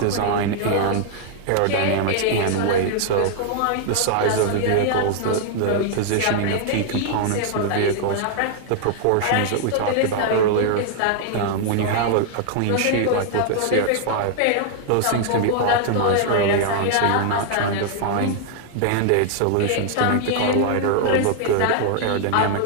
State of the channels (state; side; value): different; both; correlation -0.01